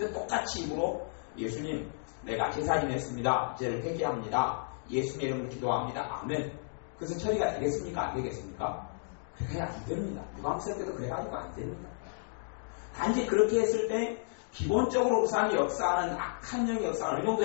똑같이 입으로 예수님 내가 제사 지냈습니다. 이제를 회개합니다. 예수님의 이름으로 기도합니다. 아멘. 그것은 처리가 되겠습니까? 안 되겠습니까? 그래야 안 됩니다. 유감스럽 때도 그래가지고 안 됩니다. 단지 그렇게 했을 때 기본적으로 우상이 역사하는 악한 영의 역사를 어느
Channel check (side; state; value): right; silent; digital silence